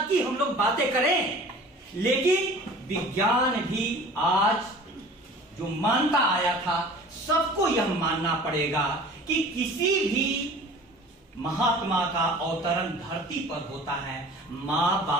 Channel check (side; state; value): both; normal; correlation 0.44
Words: की हम लोग बातें करें, लेकिन विज्ञान भी आज जो मानता आया था, सबको यह मानना पड़ेगा कि किसी भी महात्मा का अवतरण धरती पर होता है मां